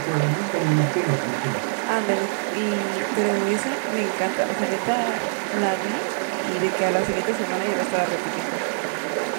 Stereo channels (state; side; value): silent; left; 61 dB below the other